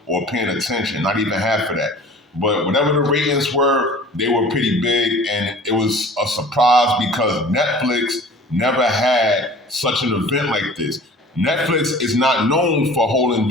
or paying attention, not even half of that. But whatever the ratings were, they were pretty big, and it was a surprise because Netflix never had such an event like this. Netflix is not known for holding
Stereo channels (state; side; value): normal; both; correlation 0.45